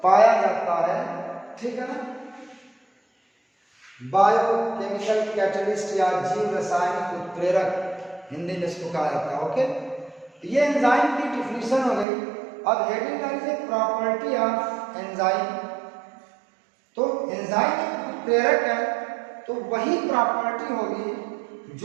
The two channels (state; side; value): drops out; left; at 12.1 s